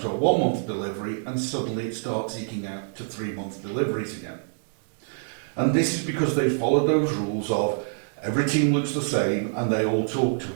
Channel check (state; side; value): silent; left; digital silence